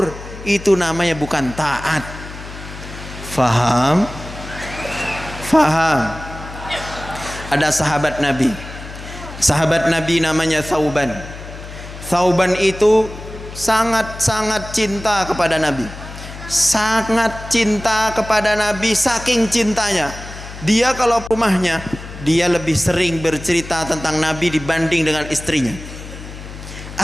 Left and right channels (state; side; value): noise; left; hum, 13 dB below the sound